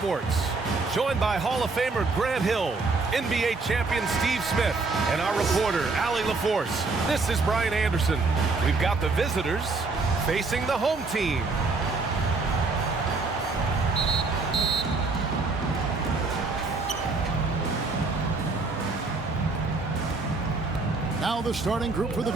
Joined by Hall of Famer Grant Hill, NBA champion Steve Smith, and our reporter, Allie LaForce. This is Brian Anderson. We've got the visitors facing the home team. Now the starting group for the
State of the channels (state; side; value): quieter; left; 3.8 dB